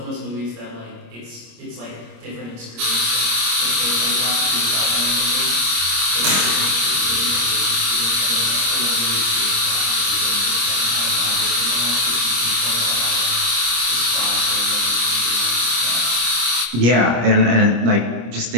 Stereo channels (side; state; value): left; late; 25 ms